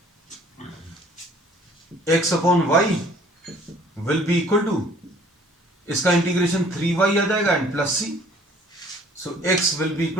x upon y will be equal to, इसका इंटीग्रेशन 3y आ जाएगा and plus c. So x will be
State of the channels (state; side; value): normal; both; correlation 0.55